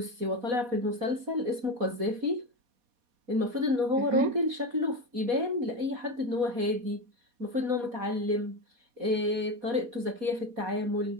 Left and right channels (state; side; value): late; left; 4.2 ms